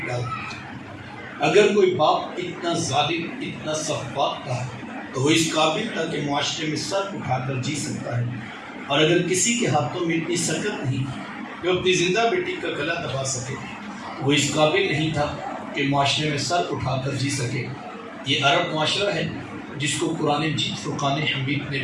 ڈالتا۔ اگر کوئی باپ اتنا ظالم، اتنا سفاک تھا تو وہ اس قابل تھا کہ معاشرے میں سر اٹھا کر جی سکتا ہے، اور اگر کسی کے ہاتھوں میں اتنی سکت نہیں کہ وہ اپنی زندہ بیٹی کا گلا دبا سکے، وہ اس قابل نہیں تھا کہ معاشرے میں سر اٹھا کر جی سکے۔ یہ عرب معاشرہ ہے جس کو قرآن مجید فرقان حمید نے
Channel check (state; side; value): identical; both; correlation 1.00